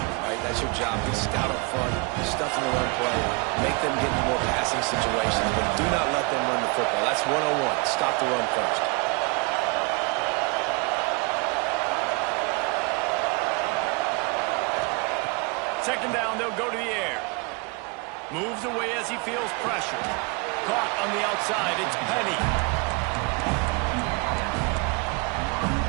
right? That's your job. Be stout up front, stuff in the run play, make them get into more passing situations, but do not let them run the football. That's 101. Stop the run first. Second down, they'll go to the air. Moves away as he feels pressure. Caught on the outside, it's Penny.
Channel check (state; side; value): quieter; left; 30.2 dB